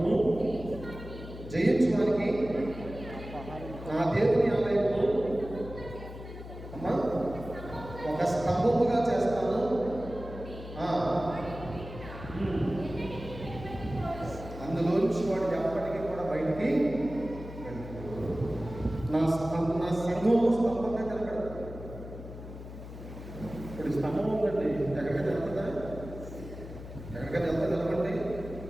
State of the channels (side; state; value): left; noise; hum, 12 dB below the sound